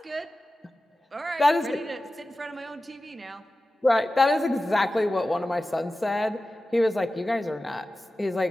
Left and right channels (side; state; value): both; normal; correlation 0.95